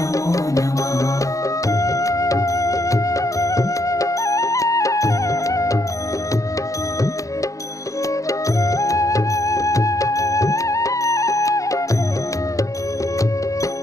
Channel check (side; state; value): right; late; 0.16 ms